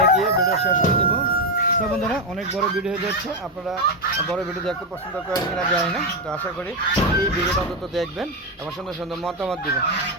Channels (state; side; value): normal; both; correlation 0.07